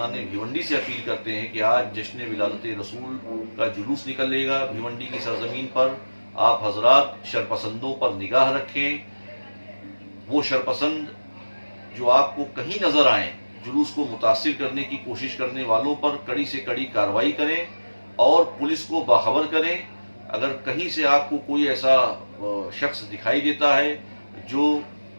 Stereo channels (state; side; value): inverted; both; correlation -1.00